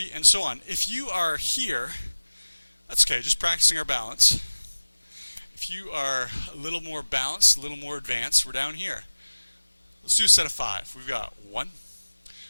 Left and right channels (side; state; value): both; inverted; correlation -1.00